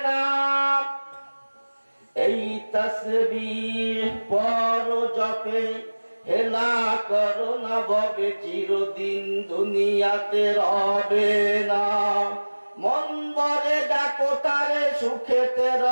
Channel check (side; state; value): both; inverted; correlation -1.00